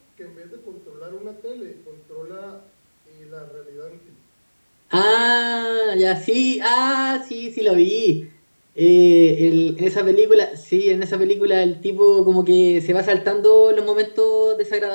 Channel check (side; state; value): both; inverted; correlation -1.00